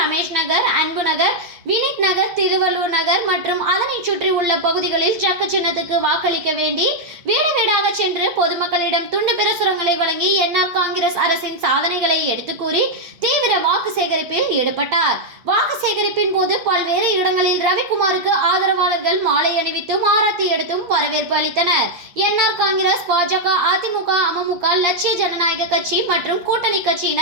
நகர், அன்பு நகர், வினித் நகர், திருவள்ளூர் நகர் மற்றும் அதனை சுற்றி உள்ள பகுதிகளில் ஜக்கு சின்னத்துக்கு வாக்களிக்க வேண்டி வீடு வீடாக சென்று பொதுமக்களிடம் துண்டு பிரசுரங்களை வழங்கி என்ஆர் காங்கிரஸ் அரசின் சாதனைகளை எடுத்து கூறி தீவிர வாக்கு சேகரிப்பில் ஈடுபட்டார். வாக்கு சேகரிப்பின் போது பல்வேறு இடங்களில் ரவிக்குமாருக்கு ஆதரவாளர்கள் மாலை அணிவித்தும் ஆரத்தி எடுத்தும் வரவேற்பு அளித்தனர். என்ஆர் காங்கிரஸ், பாஜக, அதிமுக, அமமுக, லட்சிய ஜனநாயக கட்சி மற்றும் கூட்டணி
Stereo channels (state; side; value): late; left; 8.6 ms